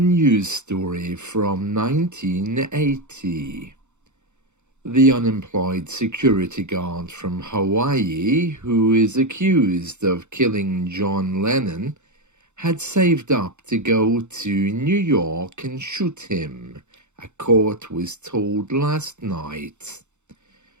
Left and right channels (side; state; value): left; late; 0.83 ms